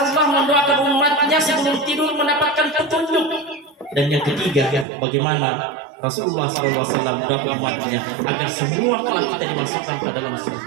mendoakan umatnya sebelum tidur mendapatkan petunjuk. Dan yang ketiga, bagaimana Rasulullah SAW mendoakan umatnya agar semua kelak kita dimasukkan ke dalam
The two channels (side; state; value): left; drops out; at 4.9 s